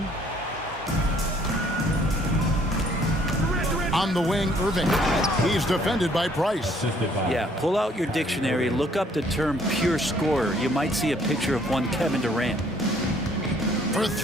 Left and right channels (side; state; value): both; normal; correlation 0.62